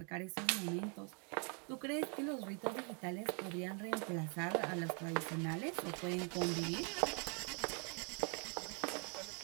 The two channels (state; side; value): quieter; left; 37.9 dB